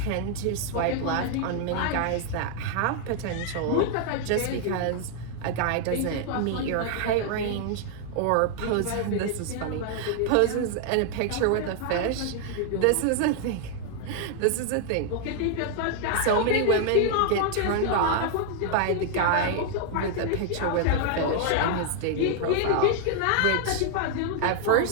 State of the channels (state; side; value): different; both; correlation 0.00